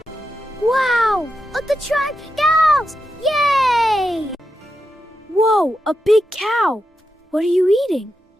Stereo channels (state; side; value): normal; both; correlation 0.87